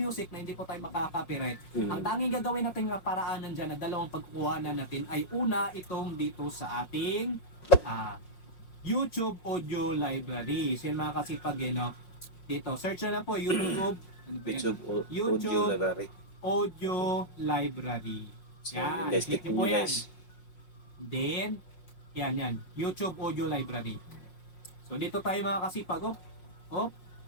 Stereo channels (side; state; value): right; late; 5.5 ms